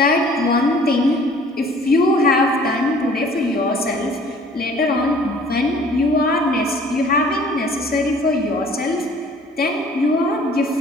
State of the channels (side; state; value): both; normal; correlation 0.52